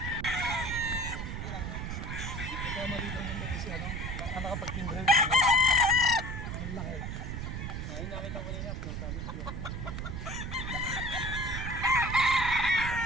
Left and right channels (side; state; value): right; noise; rumble, 5 dB below the sound